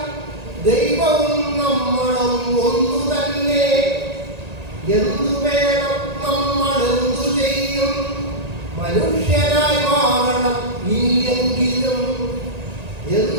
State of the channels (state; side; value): late; left; 1.9 ms